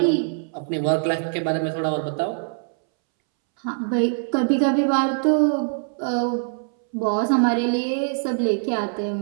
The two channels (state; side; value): silent; left; 63 dB below the other